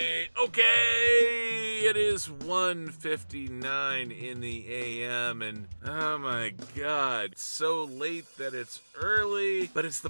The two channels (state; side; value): inverted; both; correlation -1.00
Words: It is 1:59 in the AM, and oh my god, it's so late that it's early, but it's